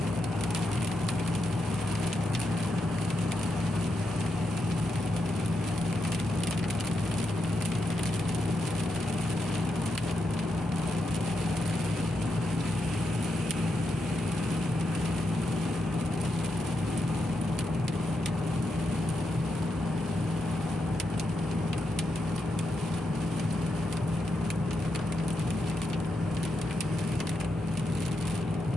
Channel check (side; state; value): both; normal; correlation 0.84